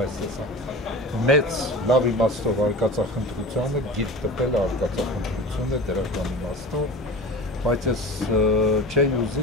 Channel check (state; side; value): normal; both; correlation 0.34